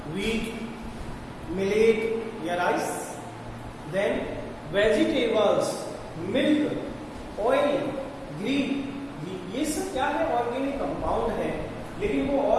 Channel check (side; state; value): both; identical; correlation 1.00